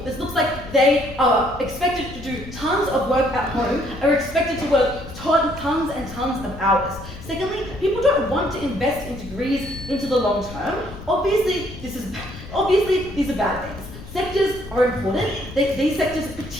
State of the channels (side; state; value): left; noise; rumble, 14 dB below the sound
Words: This looks like they are expected to do tons of work at home, are expected to work tons and tons of hours. Secondly, people don't want to invest in degrees into the long term. Obviously, these are bad things. Sectors are important. These sectors